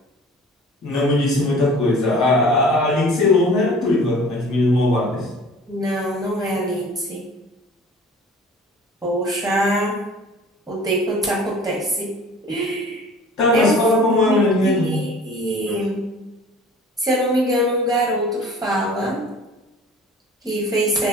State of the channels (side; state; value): both; normal; correlation 0.46